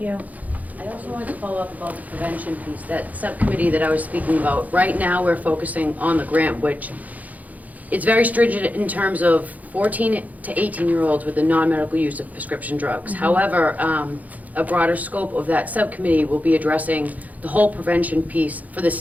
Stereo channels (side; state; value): left; late; 0.077 ms